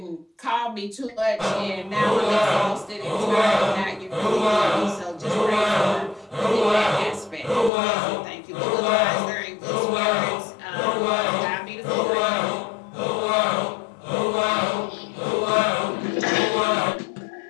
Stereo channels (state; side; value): drops out; right; at 7.7 s